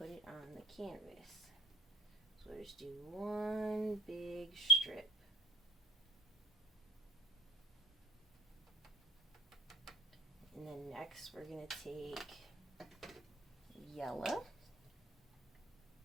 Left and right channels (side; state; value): left; quieter; 3.1 dB